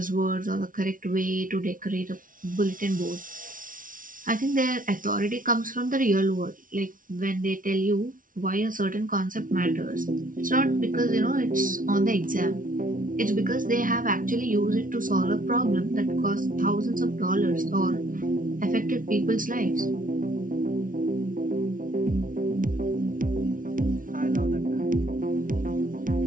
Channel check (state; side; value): late; left; 0.39 ms